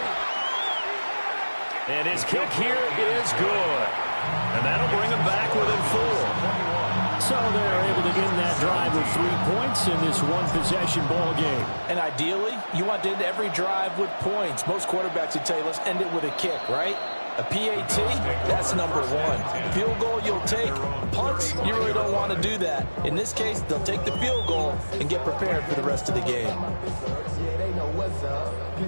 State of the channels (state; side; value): inverted; both; correlation -1.00